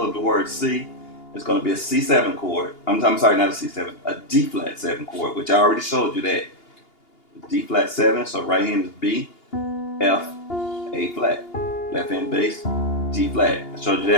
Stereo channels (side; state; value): right; late; 2.8 ms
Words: of the word C is going to be a C7 chord. I'm sorry, not a C7, a D flat 7 chord, which I already showed you that. D flat 7, so right hand is B, F, A flat. Left hand bass, D flat. I showed you